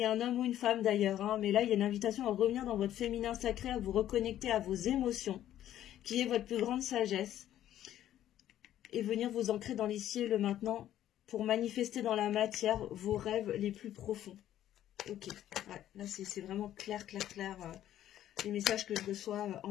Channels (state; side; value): quieter; right; 12.0 dB